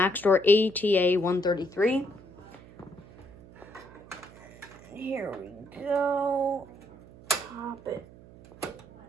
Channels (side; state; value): right; noise; hum, 21 dB below the sound